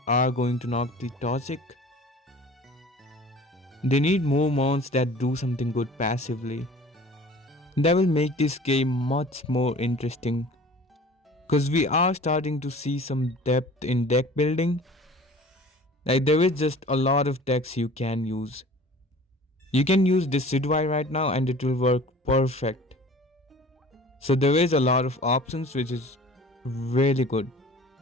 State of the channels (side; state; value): both; normal; correlation 0.45